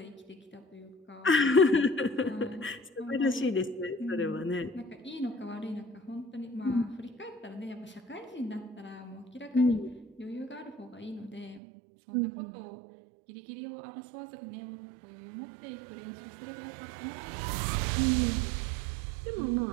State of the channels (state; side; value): drops out; left; at 11.6 s